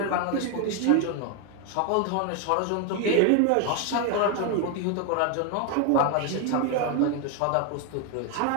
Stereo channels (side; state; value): both; different; correlation 0.01